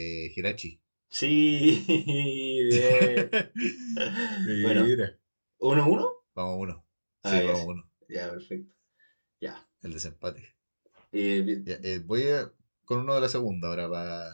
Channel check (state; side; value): inverted; both; correlation -1.00